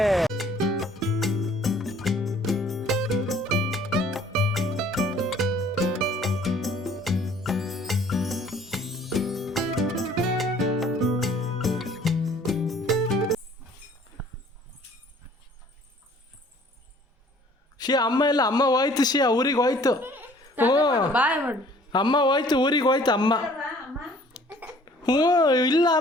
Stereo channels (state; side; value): normal; both; correlation 0.55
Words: ಶಿಯಾ ಅಮ್ಮ ಇಲ್ಲ, ಅಮ್ಮ ಹೋಯ್ತು. ಶಿಯಾ ಊರಿಗೆ ಹೋಯ್ತು. ಅಮ್ಮ ಹೋಯ್ತು, ಊರಿಗೆ ಹೋಯ್ತು ಅಮ್ಮ. ಇಲ್ಲ